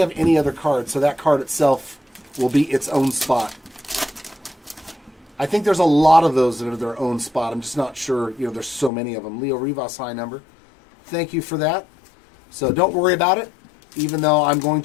any other cards, so that card itself will be its own spot. I think there's a lot of those that are their own spot. I'm just not sure, there's so many of them. Leo Rivas, high number. Thank you for that. So don't worry about it. Even though I'm going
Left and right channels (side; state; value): right; drops out; at 8.9 s